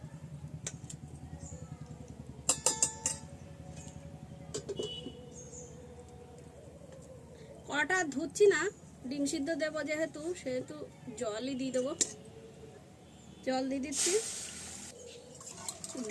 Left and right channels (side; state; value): both; identical; correlation 1.00